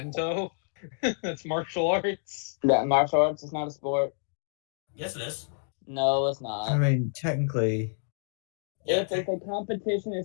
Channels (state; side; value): silent; right; digital silence